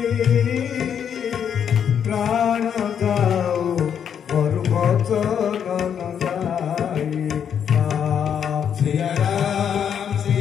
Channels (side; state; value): right; quieter; 8.2 dB